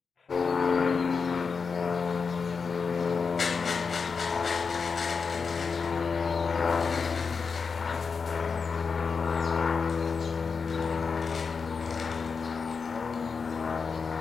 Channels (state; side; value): quieter; right; 5.3 dB